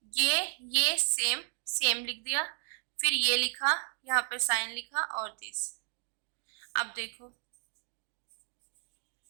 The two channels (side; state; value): left; silent; digital silence